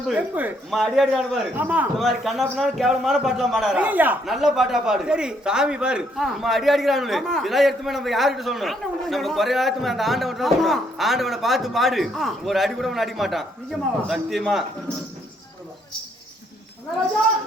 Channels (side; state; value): both; normal; correlation 0.71